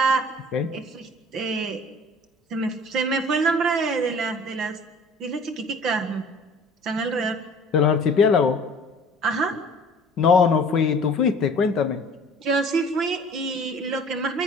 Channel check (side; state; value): both; normal; correlation 0.48